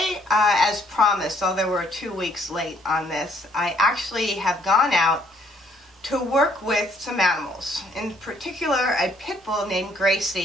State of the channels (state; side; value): normal; both; correlation 0.65